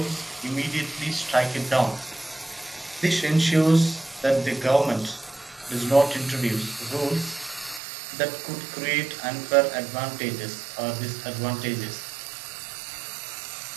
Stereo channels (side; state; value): left; drops out; at 7.8 s